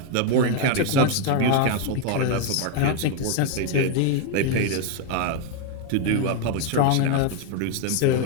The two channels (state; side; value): different; both; correlation 0.01